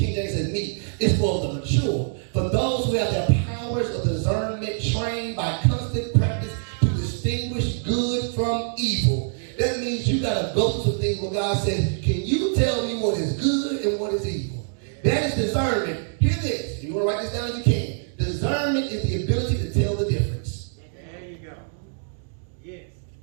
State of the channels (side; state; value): left; silent; digital silence